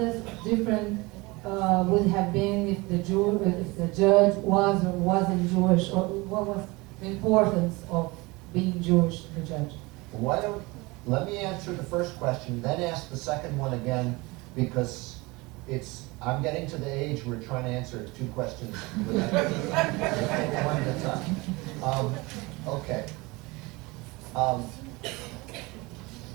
different would have been if the judge was or wasn't Jewish, or what was the importance of being Jewish to the judge? Let me answer the first question, then ask the second one again, because I'm getting to the age where we're trying to answer two questions one at a time. Okay.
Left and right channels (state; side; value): quieter; left; 24.0 dB